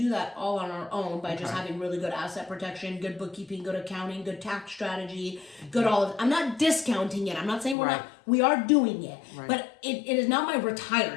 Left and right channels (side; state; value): right; drops out; at 7.8 s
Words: that all on our own by just having really good asset protection, good bookkeeping, good accounting, good tax strategy, good all of. I'm not discounting it. I'm not saying we're not. We are doing it, but it is not my